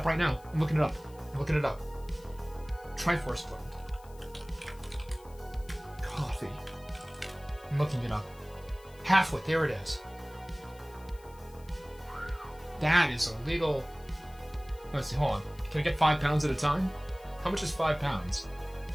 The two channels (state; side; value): noise; left; hiss, 26 dB below the sound